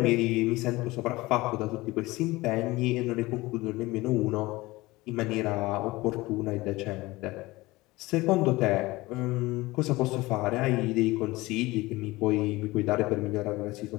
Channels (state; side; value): quieter; right; 20.4 dB